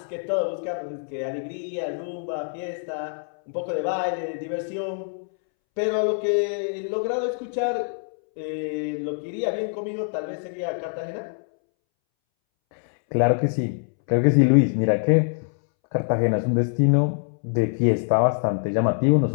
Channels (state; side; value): silent; right; 62 dB below the other